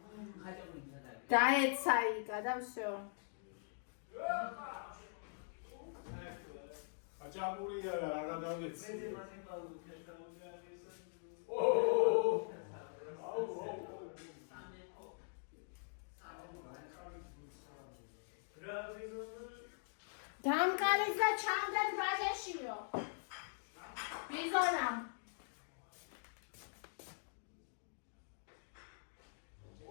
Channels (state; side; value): silent; right; digital silence